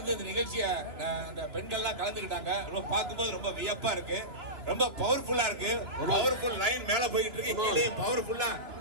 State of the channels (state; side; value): late; left; 2.9 ms